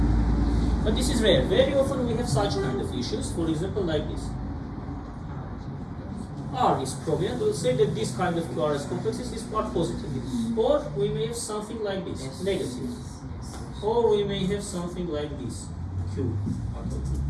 But this is rare. Very often we have such kind of issues, for example like this. R is prominent, we'll say that this kind of QRS complexes is part positive. Or we may have something like this, negative. Or we may have something like this, Q.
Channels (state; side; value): identical; both; correlation 1.00